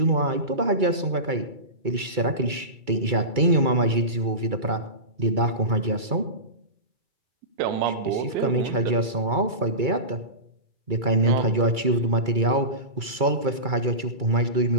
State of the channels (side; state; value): left; late; 2.3 ms